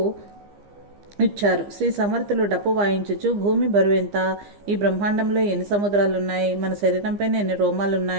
ఇచ్చారు. శ్రీ సమర్థులు డప్పు వాయించుచు, భూమి బరువెంత, ఈ బ్రహ్మాండంలో ఎన్ని సముద్రాలున్నాయి, మన శరీరంపైన ఎన్ని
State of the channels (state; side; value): late; left; 15 ms